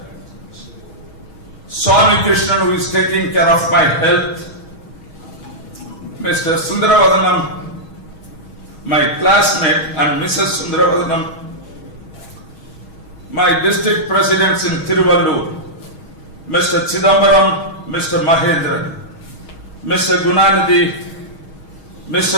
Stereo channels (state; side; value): late; right; 6.3 ms